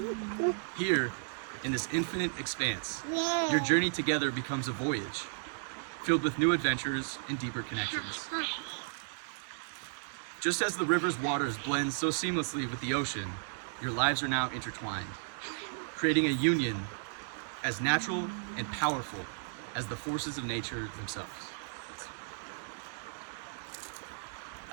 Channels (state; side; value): silent; left; digital silence